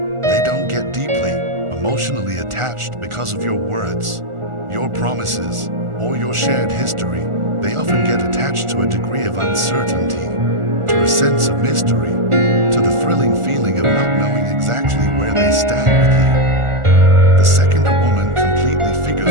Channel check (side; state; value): left; late; 1.4 ms